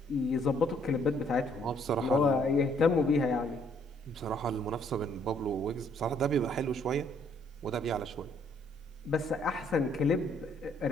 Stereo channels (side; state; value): both; normal; correlation 0.66